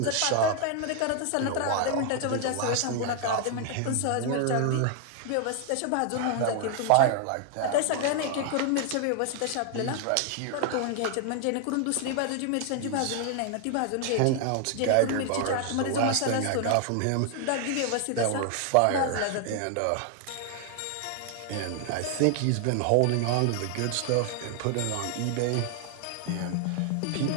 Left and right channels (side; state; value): both; different; correlation 0.00